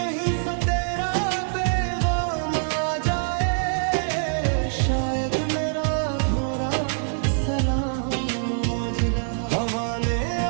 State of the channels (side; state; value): left; silent; digital silence